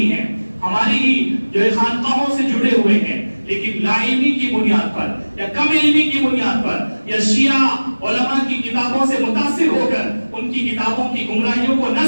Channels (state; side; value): inverted; both; correlation -1.00